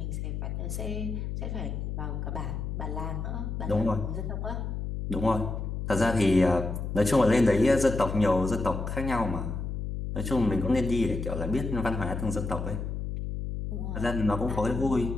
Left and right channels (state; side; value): noise; left; hum, 4 dB below the sound